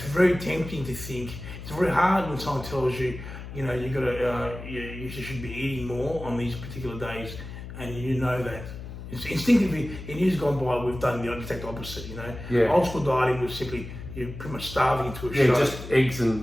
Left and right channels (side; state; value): left; noise; hum, 11 dB below the sound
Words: very tempting to think. It's very hard when someone tells you, you know, you should be eating more on these particular days, and you know that. It's instinctively, in years gone by, we've done the exact opposite. You know, old school dieting was simply you're pretty much starving to a shot. Just eggs